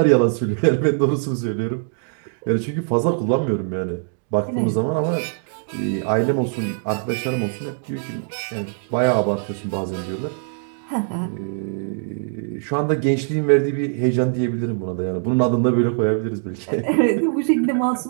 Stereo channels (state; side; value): silent; left; digital silence